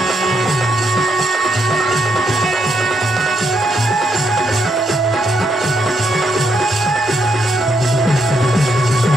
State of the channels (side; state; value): both; normal; correlation 0.77